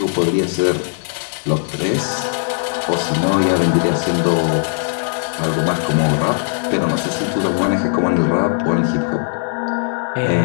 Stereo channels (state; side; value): silent; right; digital silence